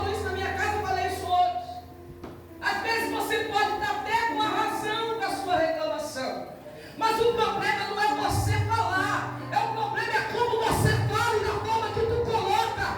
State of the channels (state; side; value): identical; both; correlation 1.00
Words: isso na minha casa, eu falei isso hoje. Às vezes você pode estar até com a razão com a sua reclamação, mas o problema não é você falar, o problema é como você fala e na forma que tu